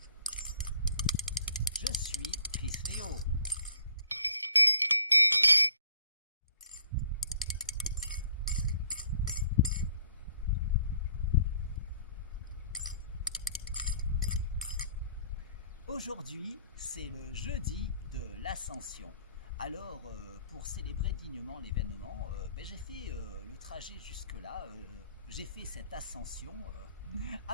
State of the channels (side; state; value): both; inverted; correlation -0.58